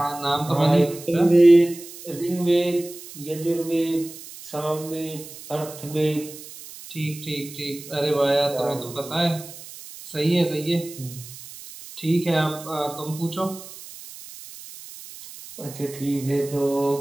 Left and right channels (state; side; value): noise; right; hiss, 15 dB below the sound